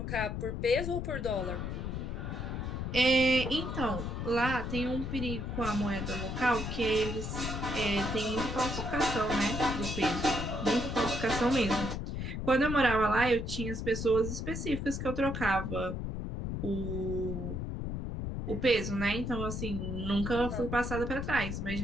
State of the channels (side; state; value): left; noise; rumble, 4 dB below the sound